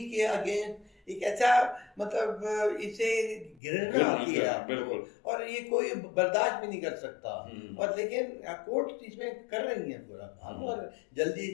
के अगेंस्ट एक ऐसा, मतलब इसे घृणा आती है आपको, और ये कोई बर्दाश्त भी नहीं कर सकता। और लेकिन कोर्ट इसमें कर रही है पूरा काम, और जल्दी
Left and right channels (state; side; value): drops out; right; at 3.6 s